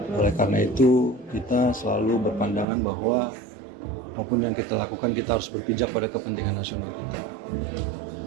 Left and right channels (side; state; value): left; drops out; at 2.7 s